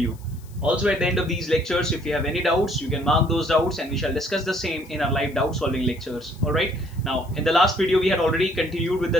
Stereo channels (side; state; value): left; noise; hiss, 26 dB below the sound